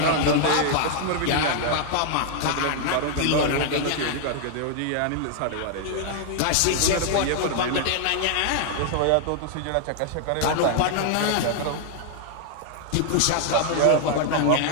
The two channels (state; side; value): different; both; correlation 0.00